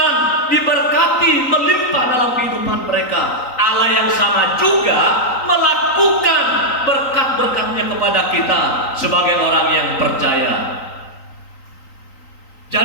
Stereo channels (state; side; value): late; right; 3.9 ms